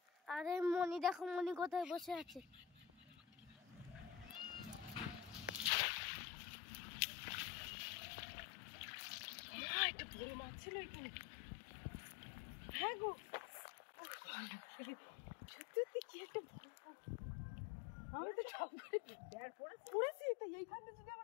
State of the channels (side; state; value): right; drops out; at 5.7 s